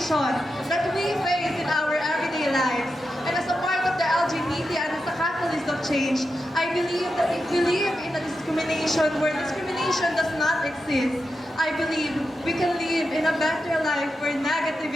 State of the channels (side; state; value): both; normal; correlation 0.89